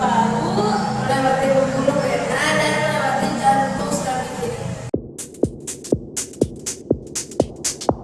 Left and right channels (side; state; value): both; identical; correlation 1.00